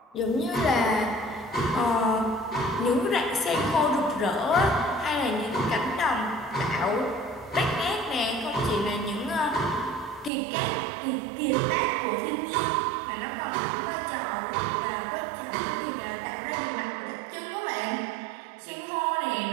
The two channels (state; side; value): drops out; left; at 10.3 s